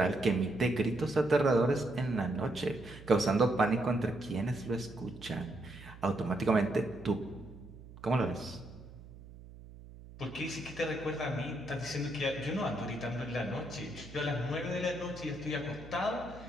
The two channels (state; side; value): noise; right; hum, 17 dB below the sound